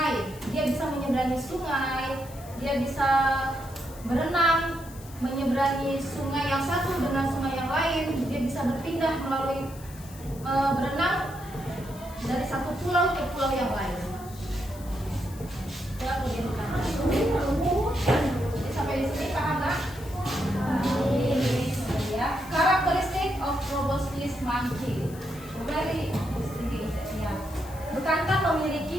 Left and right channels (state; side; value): noise; left; hiss, 19 dB below the sound